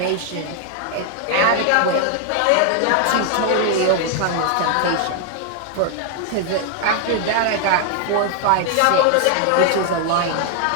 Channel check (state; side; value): different; both; correlation 0.00